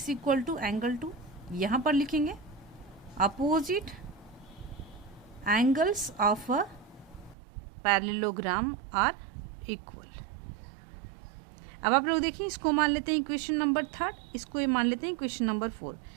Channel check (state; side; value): drops out; left; at 7.4 s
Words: इक्वल टू एंगल 2। यहाँ पर लिखेंगे opposite angles of a parallelogram are equal. अब आप लोग देखिए इसको मान लेते हैं इक्वेशन नंबर 3, इसको ये मान लेते हैं इक्वेशन नंबर 4।